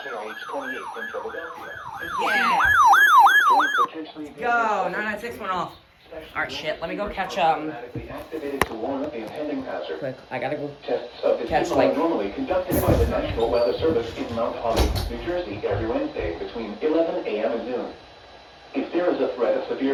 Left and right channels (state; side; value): identical; both; correlation 1.00